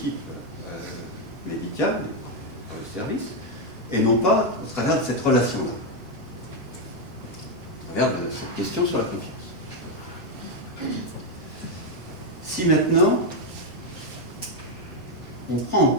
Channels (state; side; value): normal; both; correlation 0.04